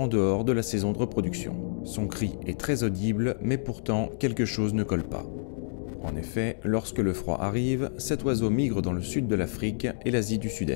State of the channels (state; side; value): silent; right; digital silence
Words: dehors de la saison de reproduction. Son cri est très audible, mais pourtant quelque chose ne colle pas. En effet, lorsque le froid arrive, cet oiseau migre dans le sud de l'Afrique et l'Asie du